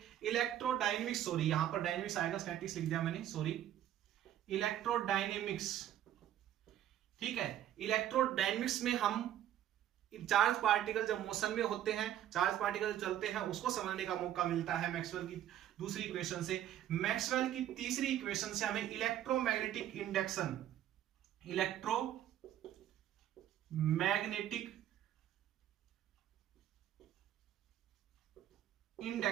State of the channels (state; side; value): quieter; left; 11.6 dB